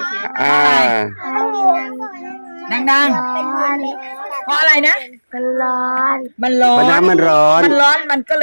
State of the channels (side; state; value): both; inverted; correlation -1.00